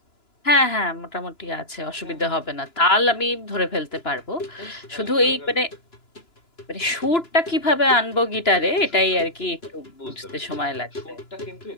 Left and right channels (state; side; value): late; right; 2.9 ms